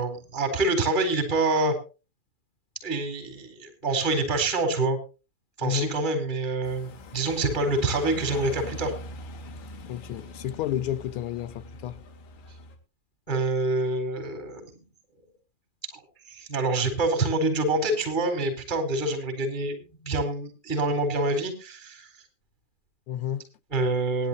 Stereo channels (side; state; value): right; late; 2.4 ms